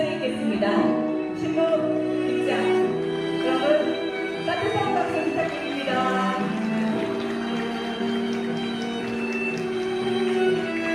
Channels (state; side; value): identical; both; correlation 1.00